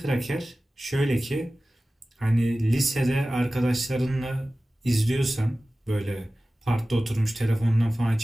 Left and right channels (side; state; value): both; normal; correlation 0.96